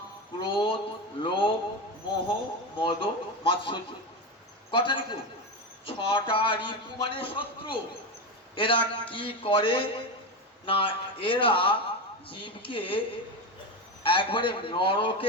ক্রোধ, লোভ, মোহ, মদ, মাৎসর্য। কটা রিপু? 6টা রিপু মানে শত্রু। এরা কি করে না, এরা জীবকে একবারে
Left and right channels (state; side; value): normal; both; correlation 0.17